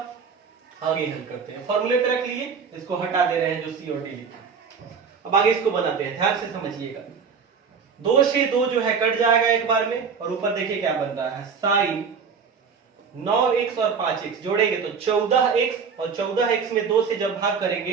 आगे हल करते हैं, फॉर्मूले पे रख लिए, इसको हटा दे रहे हैं जो c और d लिखा। अब आगे इसको बनाते हैं, ध्यान से समझिएगा। 2 से 2 जो है कट जाएगा एक बार में, और ऊपर देखिए क्या बन रहा है sin 9x और 5x जोड़ेंगे तो 14x, और 14x में 2 से जब भाग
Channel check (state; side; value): quieter; left; 5.9 dB